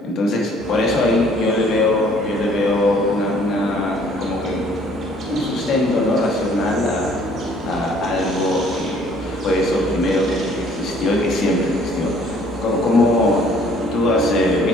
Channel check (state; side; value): normal; both; correlation 0.59